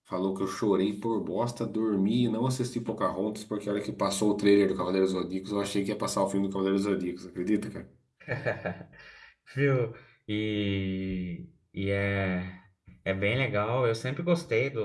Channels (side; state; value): both; identical; correlation 1.00